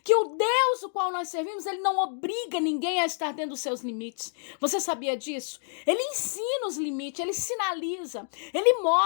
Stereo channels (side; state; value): right; silent; 59 dB below the other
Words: que o Deus o qual nós servimos, ele não obriga ninguém a estar dentro dos seus limites. Você sabia disso? Ele ensina os limites, ele sinaliza, ele